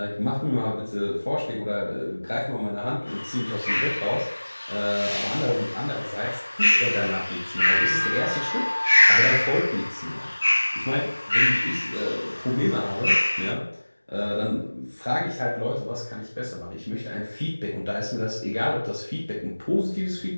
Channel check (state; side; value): inverted; both; correlation -1.00